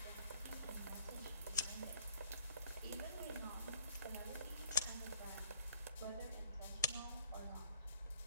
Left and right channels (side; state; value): both; inverted; correlation -0.58